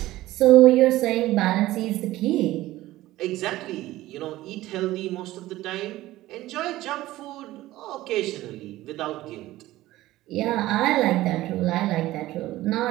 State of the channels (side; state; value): left; quieter; 16.4 dB